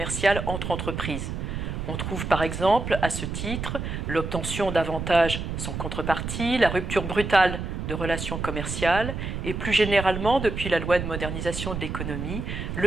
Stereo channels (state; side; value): noise; right; rumble, 5 dB below the sound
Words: entre entreprises. On trouve par exemple, à ce titre, l'obtention d'avantages sans contrepartie, la rupture brutale de relations commerciales et plus généralement, depuis la loi de modernisation de l'économie,